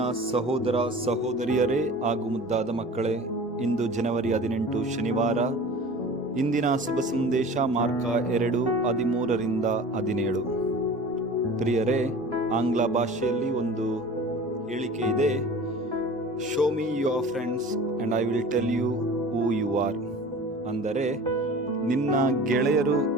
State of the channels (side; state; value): both; normal; correlation 0.40